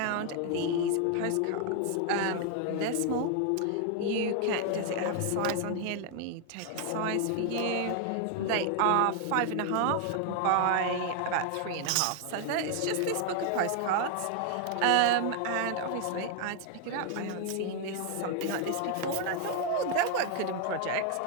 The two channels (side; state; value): both; different; correlation 0.00